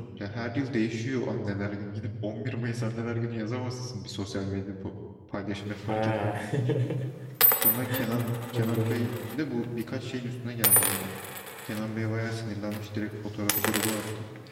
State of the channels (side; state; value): both; identical; correlation 1.00